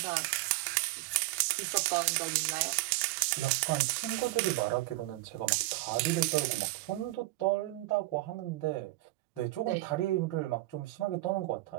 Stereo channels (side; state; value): left; quieter; 19.6 dB